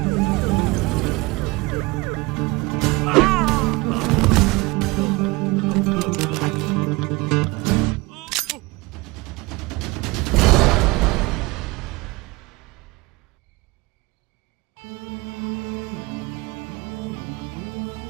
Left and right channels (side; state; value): left; quieter; 23.4 dB